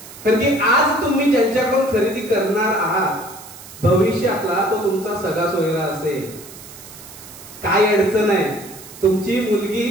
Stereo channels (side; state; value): right; noise; hiss, 17 dB below the sound